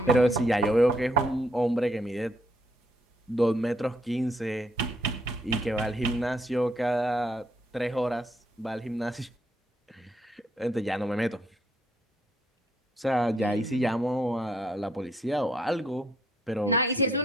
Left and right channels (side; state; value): both; normal; correlation 0.71